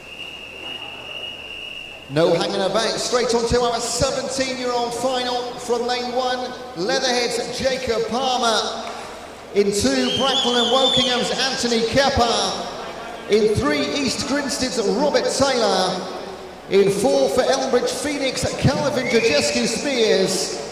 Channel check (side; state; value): both; identical; correlation 1.00